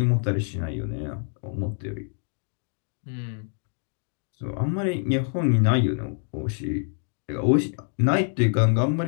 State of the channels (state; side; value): silent; right; 61 dB below the other